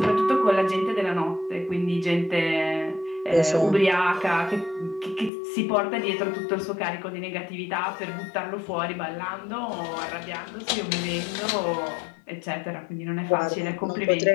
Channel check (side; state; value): right; drops out; at 5.3 s